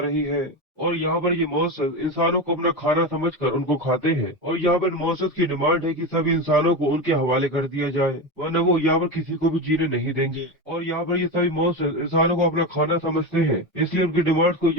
रही है। और यहाँ पर ये मॉन्स्टर्स इंसानों को अपना खाना समझकर उनको खाते हैं, और यहाँ पर मॉन्स्टर्स की डिमांड है कि सभी इंसानों को उनके हवाले कर दिया जाए, वरना वो यहाँ पर किसी को भी जीने नहीं देंगे। और यहाँ पर ये सभी मॉन्स्टर्स इंसानों को अपना खाना समझते हैं, इसलिए उनकी डिमांड को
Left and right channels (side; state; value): both; normal; correlation 0.19